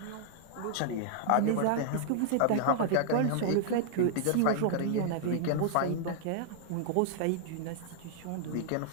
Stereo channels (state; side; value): different; both; correlation -0.01